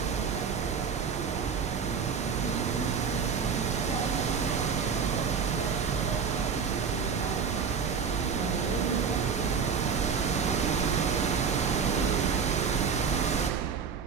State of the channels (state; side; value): quieter; left; 6.2 dB